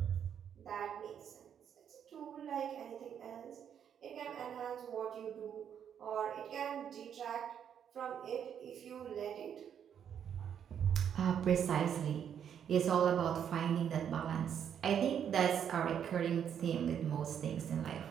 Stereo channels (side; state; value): left; quieter; 8.6 dB